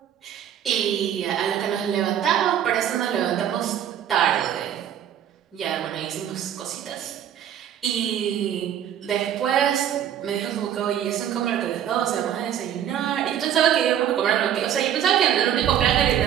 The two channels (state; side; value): quieter; left; 10.1 dB